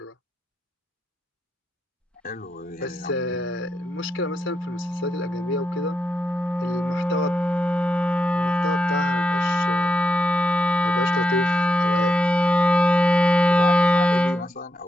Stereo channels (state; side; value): normal; both; correlation 0.84